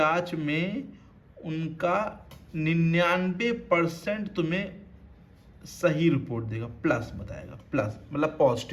में उनका 99% तुम्हें सही रिपोर्ट देगा, प्लस बताएगा, प्लस मतलब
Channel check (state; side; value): identical; both; correlation 1.00